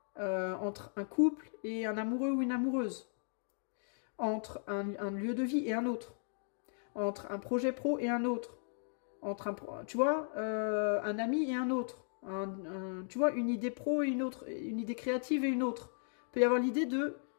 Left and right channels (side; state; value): right; silent; digital silence